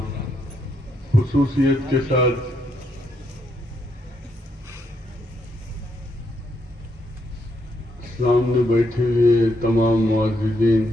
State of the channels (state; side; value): normal; both; correlation 0.77